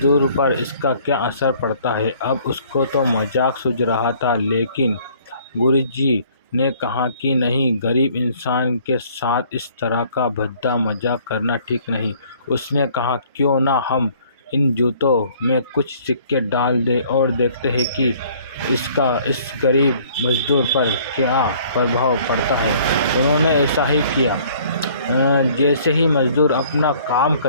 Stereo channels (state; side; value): inverted; both; correlation -0.57